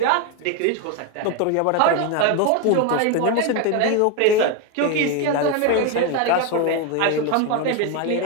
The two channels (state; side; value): different; both; correlation 0.02